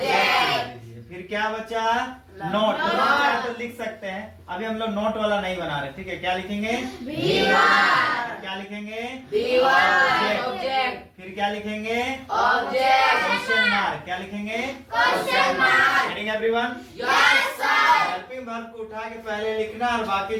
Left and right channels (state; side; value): identical; both; correlation 1.00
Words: फिर क्या बचा? नोट। तो लिख सकते हैं। अभी हम लोग नोट वाला नहीं बना रहे, ठीक है? क्या लिखेंगे? B1 क्या लिखेंगे? B1 object, फिर क्या लिखेंगे? object, question mark. क्या लिखेंगे? question mark. Getting everyone? Yes, sir. Helping verb को उठा के पहले लिखना और बाकी